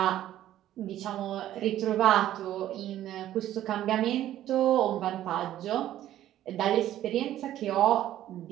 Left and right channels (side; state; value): left; quieter; 12.8 dB